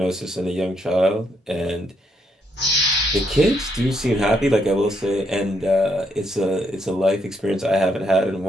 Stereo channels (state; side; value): normal; both; correlation 0.75